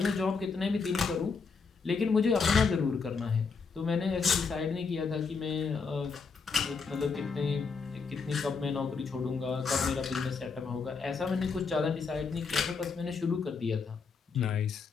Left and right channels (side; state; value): right; quieter; 5.0 dB